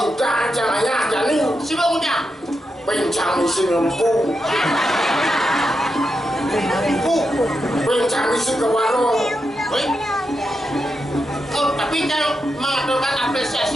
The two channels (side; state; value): both; normal; correlation 0.86